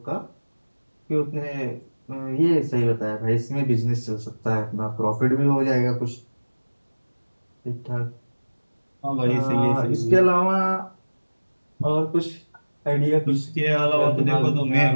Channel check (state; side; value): inverted; both; correlation -1.00